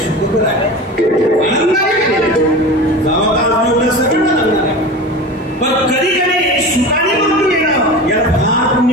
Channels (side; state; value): both; normal; correlation 0.31